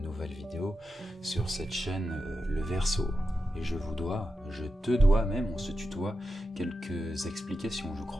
nouvelles vidéos sur cette chaîne Le Verseau. Et je te dois même, on se tutoie, quelques explications je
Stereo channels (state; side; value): normal; both; correlation 0.89